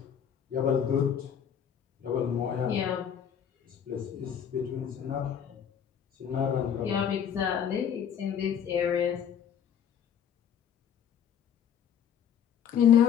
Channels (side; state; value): right; quieter; 8.5 dB